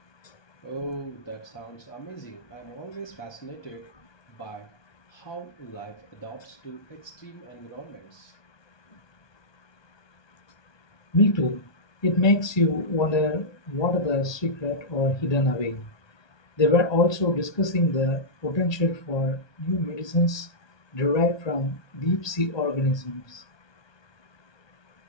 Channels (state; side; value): late; right; 1.2 ms